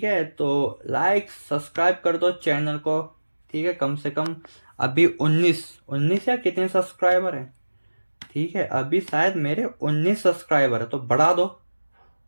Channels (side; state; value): both; inverted; correlation -1.00